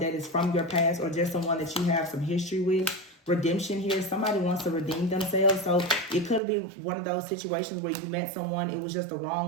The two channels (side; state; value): left; drops out; at 6.4 s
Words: is from your past or just someone that you have some history with. Redemption here. Somebody wants to redeem themselves. So it could be one of those situations where you met someone, it was just the